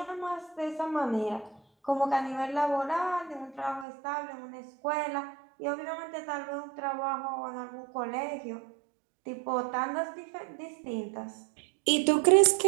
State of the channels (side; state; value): left; drops out; at 3.9 s